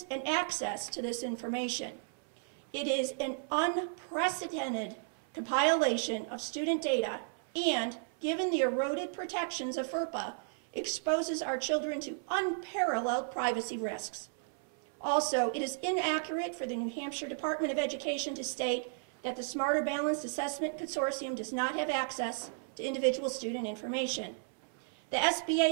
and access to this information. It is an unprecedented compilation of student data and, given the eroded protections of FERPA, exposes our children to unparalleled privacy risks. Also, it is inaccurate for the New Hampshire Department of Education to state that the Smarter Balanced Assessment Consortium does not have access to individual student information. The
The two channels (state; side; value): silent; left; 55 dB below the other